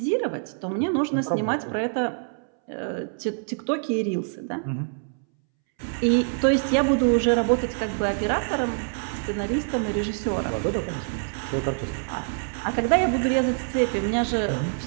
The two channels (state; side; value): silent; left; 61 dB below the other